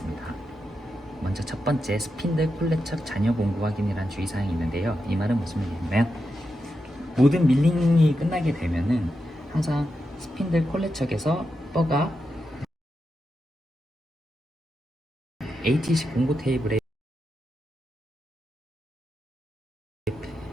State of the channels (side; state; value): both; normal; correlation 0.87